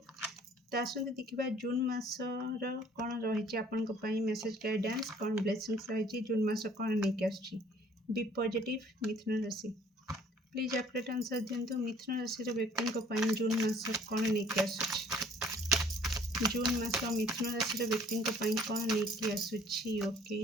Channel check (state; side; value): normal; both; correlation 0.56